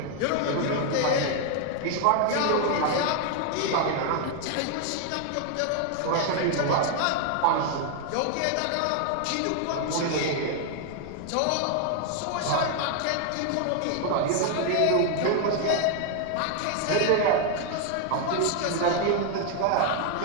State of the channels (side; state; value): both; different; correlation 0.00